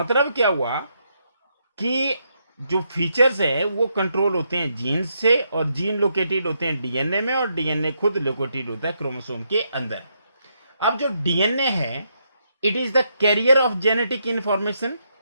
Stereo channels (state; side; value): inverted; both; correlation -0.78